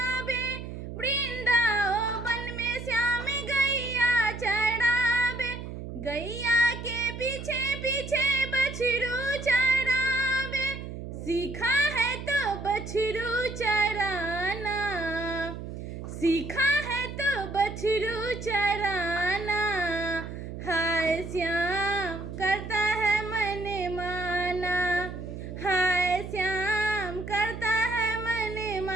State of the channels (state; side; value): noise; right; hum, 9 dB below the sound